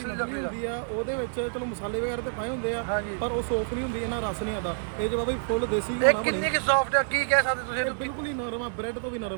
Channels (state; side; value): silent; left; 59 dB below the other